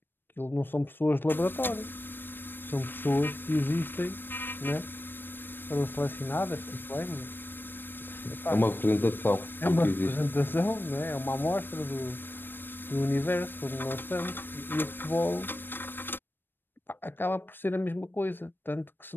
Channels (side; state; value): right; late; 0.096 ms